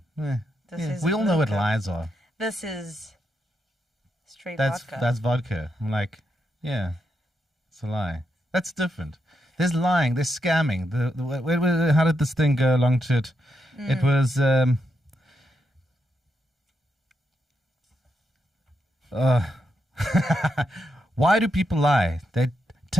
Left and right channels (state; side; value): normal; both; correlation 0.83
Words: We all know what lies are. This is straight That's vodka. That's vodka. I'm like, yeah, it's a lie. That's different. There's lying. There's scamming. How did this thing go along to it? It was. Why do people lie? They